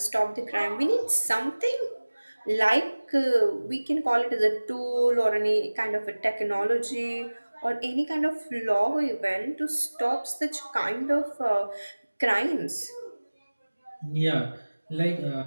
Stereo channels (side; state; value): both; inverted; correlation -1.00